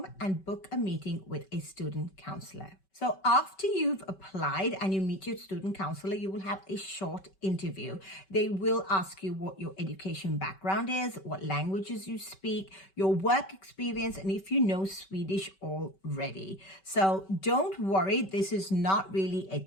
and book a meeting with a student counselor. So after you've applied and you meet your student counselor, you will have a short interview. They will ask you what your education background is, what languages you speak, your work experience, and if you know Swedish already. So don't worry, this is not really a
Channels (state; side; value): late; right; 5.2 ms